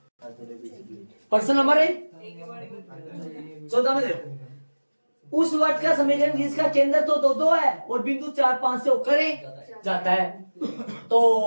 प्रश्न नंबर 14 में देखो, उस वर्ग का समीकरण जिसका केंद्र तो 2 2 है और बिंदु 4 5 से होकर जाता है, तो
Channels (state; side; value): inverted; both; correlation -1.00